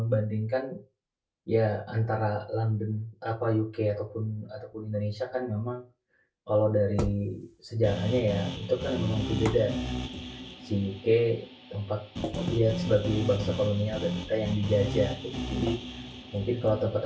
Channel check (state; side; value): identical; both; correlation 1.00